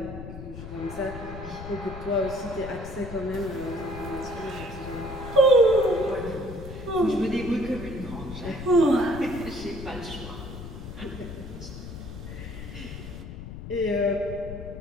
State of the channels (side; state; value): left; noise; rumble, 10 dB below the sound